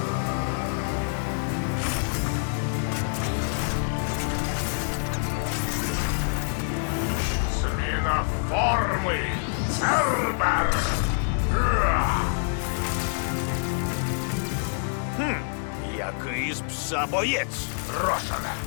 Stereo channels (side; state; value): right; silent; digital silence